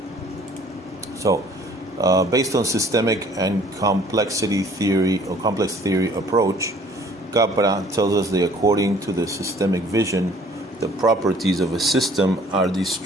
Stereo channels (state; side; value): normal; both; correlation 0.54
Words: So, based on systemic and complexity theory or complex theory approach, Capra tells us that according to the systemic vision, the properties of a system are